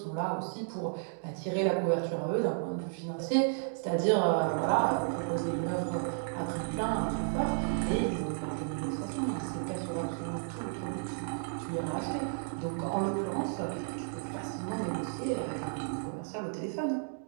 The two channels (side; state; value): left; silent; digital silence